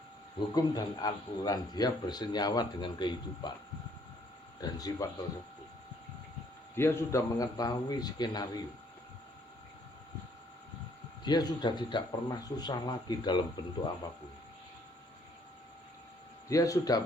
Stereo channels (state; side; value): normal; both; correlation 0.65